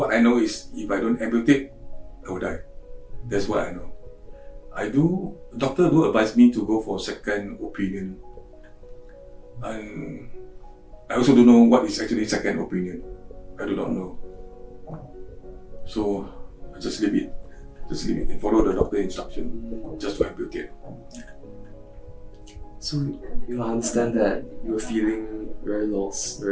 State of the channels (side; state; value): both; identical; correlation 1.00